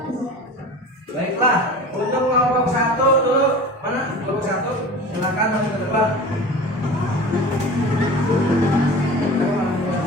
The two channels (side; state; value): both; normal; correlation 0.36